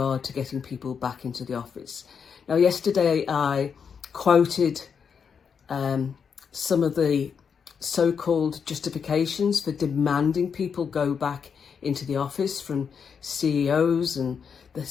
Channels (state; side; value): quieter; right; 6.6 dB